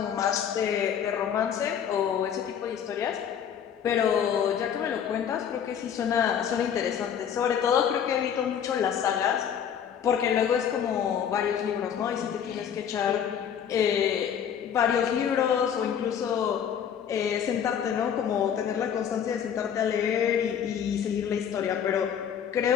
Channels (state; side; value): quieter; right; 8.5 dB